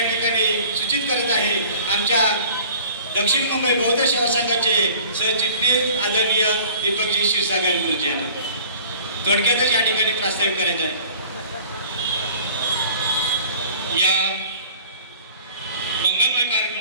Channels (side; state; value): both; inverted; correlation -0.47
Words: सूचित करत आहे आमच्या दक्षिण मुंबई बौद्ध सेवा संघाचे सरचिटणीस आदरणीय दीपकजी क्षीरसागर गुरुजी यांना थोडक्यातच या ठिकाणी प्रास्ताविक करायचं आहे। या मंगलमय